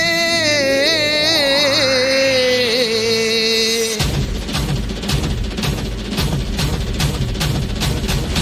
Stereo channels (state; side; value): identical; both; correlation 1.00